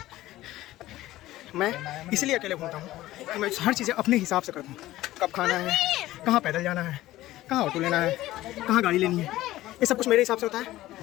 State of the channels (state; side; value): quieter; right; 15.9 dB